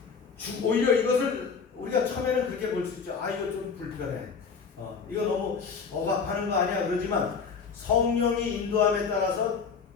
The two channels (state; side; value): quieter; right; 5.7 dB